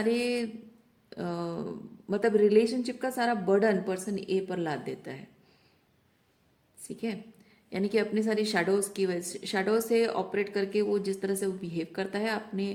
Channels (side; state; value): both; identical; correlation 1.00